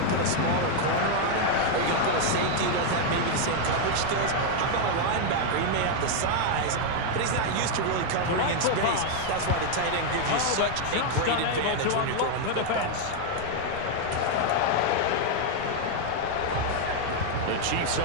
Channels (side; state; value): both; different; correlation 0.00